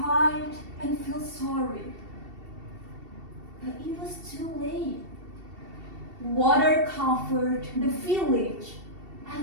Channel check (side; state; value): left; late; 2.7 ms